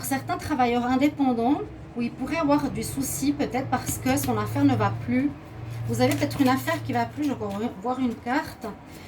certains travailleurs indépendants où il pourrait avoir du souci peut-être parce que son affaire ne va plus. Vous avez peut-être une affaire qui ne va plus, je vais voir une carte.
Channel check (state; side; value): identical; both; correlation 1.00